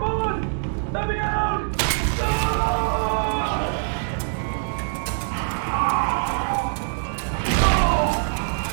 on! Let me out!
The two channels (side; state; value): left; silent; digital silence